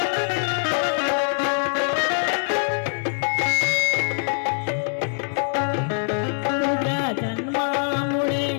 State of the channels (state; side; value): silent; right; 63 dB below the other